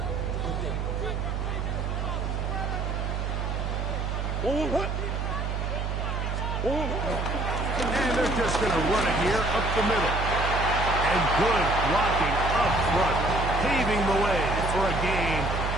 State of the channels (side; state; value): right; noise; hum, 1 dB below the sound